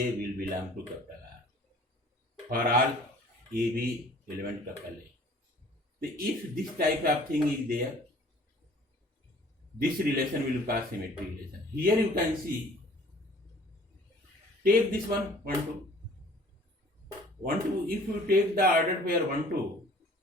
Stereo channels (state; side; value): normal; both; correlation 0.52